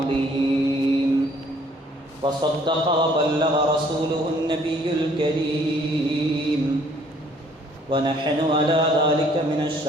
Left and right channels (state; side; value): normal; both; correlation 0.60